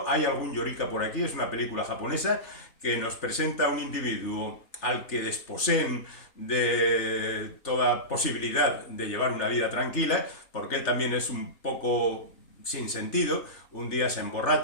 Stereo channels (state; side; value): late; right; 3.3 ms